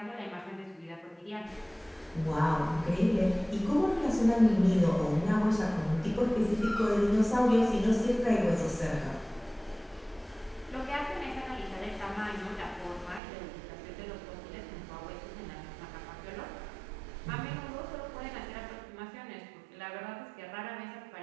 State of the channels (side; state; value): left; drops out; at 13.2 s